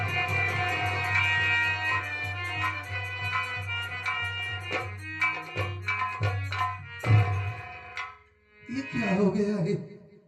ये क्या हो गया है?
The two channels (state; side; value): identical; both; correlation 1.00